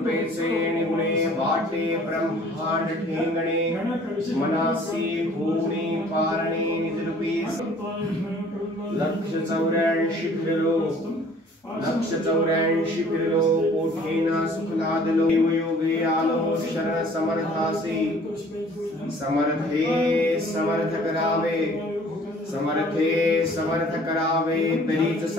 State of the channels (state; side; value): normal; both; correlation 0.53